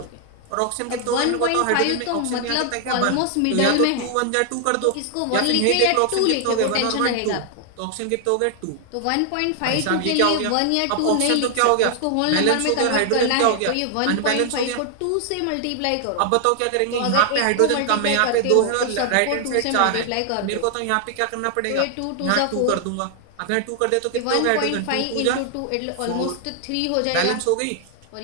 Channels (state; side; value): different; both; correlation 0.00